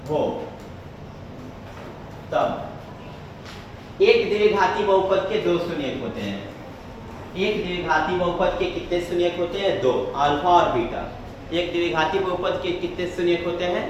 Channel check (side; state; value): both; identical; correlation 1.00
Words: हो, तब एक द्विघाती बहुपद के दो शून्यक होते हैं। एक द्विघाती बहुपद के कितने शून्यक होते हैं? दो, अल्फा और बीटा। एक द्विघाती बहुपद के कितने शून्यक होते हैं?